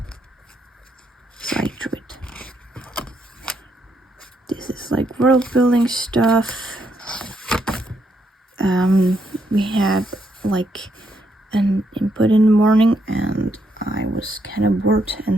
so I drew it. This is like world building stuff. We had like an input in the morning, and I was kind of bored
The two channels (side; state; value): both; normal; correlation 0.77